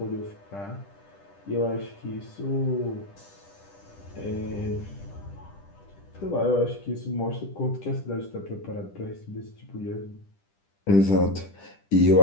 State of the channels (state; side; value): late; right; 10 ms